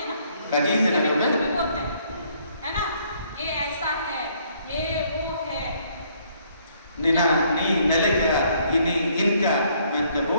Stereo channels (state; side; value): inverted; both; correlation -0.66